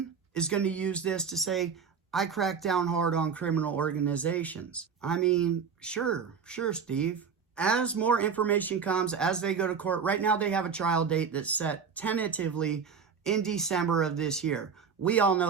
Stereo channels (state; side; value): quieter; left; 6.3 dB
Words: is gonna use this to say, I crack down hard on criminal organizations. I mean, sure, Steve. As more information comes, as they go to court, right now they have a trial date that's set tentatively in December of this year. We all